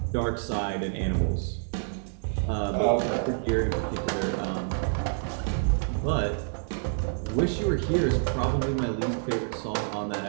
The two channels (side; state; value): left; silent; digital silence